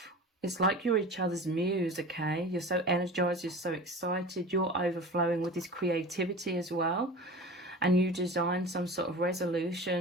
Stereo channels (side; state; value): both; normal; correlation 0.35